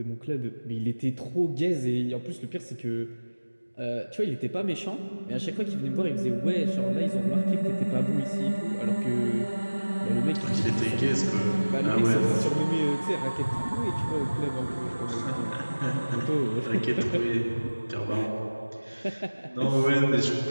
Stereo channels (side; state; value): both; inverted; correlation -1.00